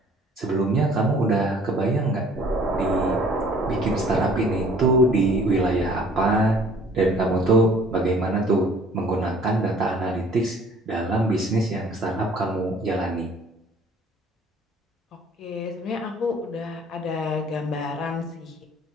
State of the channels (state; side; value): normal; both; correlation 0.55